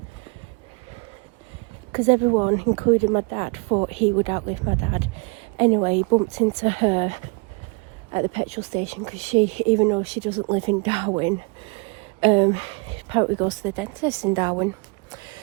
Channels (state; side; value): quieter; left; 31.8 dB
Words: Because everyone, including my dad, thought he would outlive my dad. Anyway, he bumped into her at the petrol station, because she, even though she doesn't live in Darwin, apparently goes to the dentist in Darwin.